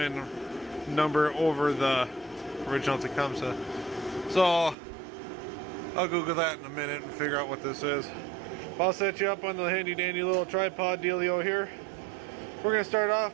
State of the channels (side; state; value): left; drops out; at 4.8 s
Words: number over the original Tecumseh. So I'll Google that in a minute and figure out what this is. I'll set you up on the handy dandy little tripod dealio here. We're going to start